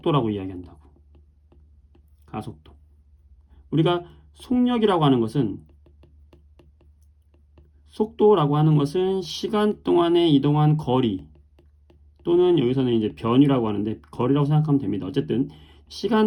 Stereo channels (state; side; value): identical; both; correlation 1.00